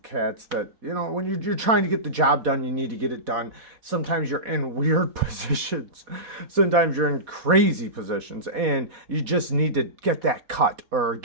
cats that, when you're trying to get the job done, you need to get it done. Sometimes you're in weird positions. Sometimes you're in crazy positions, and you just need to get that cut, or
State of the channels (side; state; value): left; late; 4.1 ms